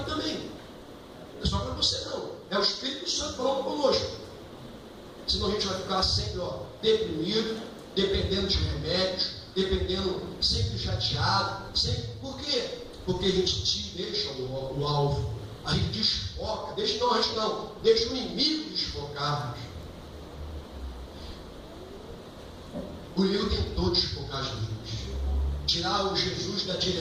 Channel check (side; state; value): both; identical; correlation 1.00